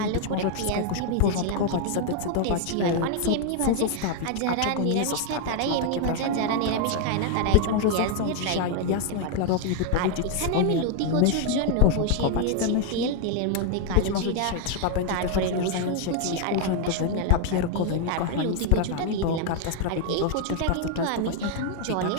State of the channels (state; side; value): different; both; correlation 0.00